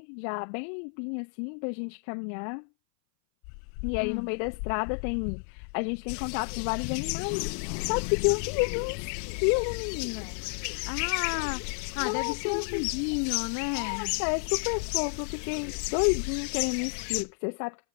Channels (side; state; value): right; silent; 58 dB below the other